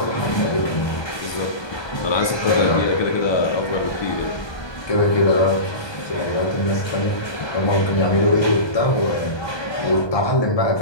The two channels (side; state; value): right; late; 1.2 ms